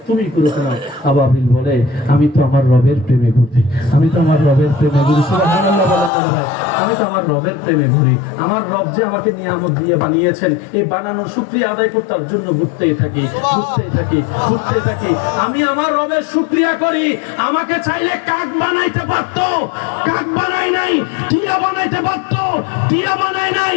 তুমি ঘুরো কেন? আবাবিল বলে, আমি তো আমার রবের প্রেমে ঘুরি, আমি তো আমার রবের প্রেমে ঘুরি। সুবহানাল্লাহ বলেন না ভাই, আমি তো আমার রবের প্রেমে ঘুরি। আমার রব যে আমাকে নিয়ামত দিয়ে বানিয়েছেন, এই বানানোর শুকরিয়া আদায় করতে জন্য ঘুরতেই থাকি, ঘুরতেই থাকি, ঘুরতে থাকি। আমি আমার রবের শুকরিয়া করি। আমাকে চাইলে কাক বানাইতে পারতো, কাক বানাই নাই। টিয়া বানাইতে পারতো, টিয়া বানাই নাই।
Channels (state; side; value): drops out; right; at 6.1 s